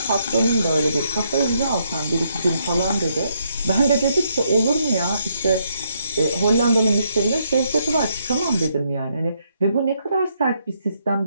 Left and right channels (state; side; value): inverted; both; correlation -0.75